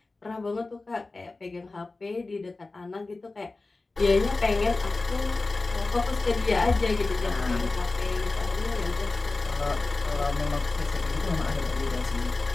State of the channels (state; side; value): quieter; right; 3.4 dB